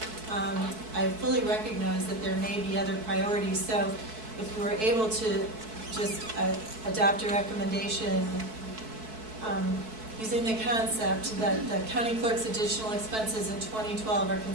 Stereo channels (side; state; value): left; late; 4.6 ms